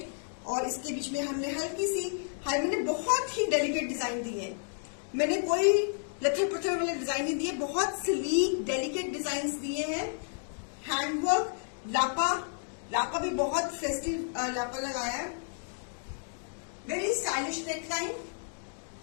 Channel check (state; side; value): silent; right; digital silence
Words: और इसके बीच में हमने हल्की सी मैंने बहुत ही डेलिकेट डिजाइन दी है. मैंने कोई लथर पत्थर वाले डिजाइन नहीं दिए, बहुत स्लीक डेलिकेट डिजाइन दिए हैं. हैंडवर्क, लापा भी बहुत फेस्टिव लापा लगाया है. Very stylish neckline.